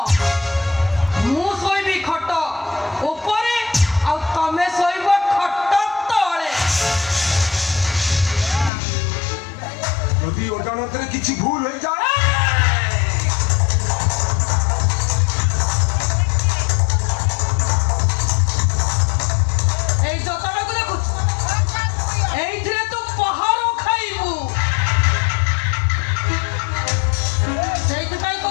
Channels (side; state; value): right; drops out; at 8.7 s